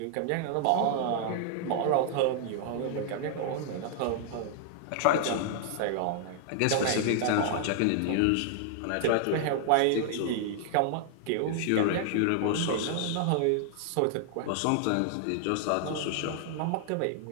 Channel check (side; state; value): both; different; correlation 0.00